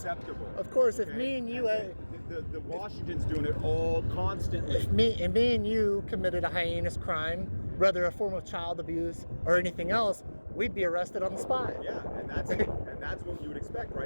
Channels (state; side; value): inverted; both; correlation -1.00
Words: Of course, if Okay? me and you, the Washington's doing it all constantly. if me and you committed a heinous crime, whether a form of child abuse or anything else, we'd be arrested on the spot. Yeah, and that's what you would expect,